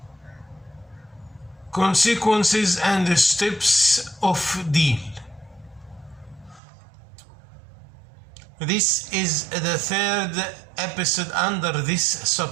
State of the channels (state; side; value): drops out; left; at 6.6 s